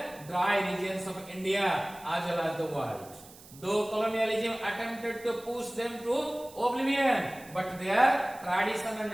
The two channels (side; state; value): right; noise; hiss, 20 dB below the sound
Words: dry regions of India as well as the world. Though colonialism attempted to push them to oblivion, but their tradition and